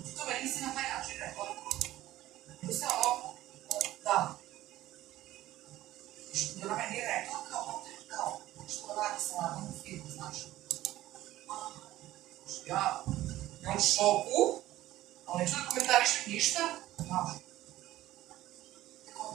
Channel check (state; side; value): quieter; left; 15.2 dB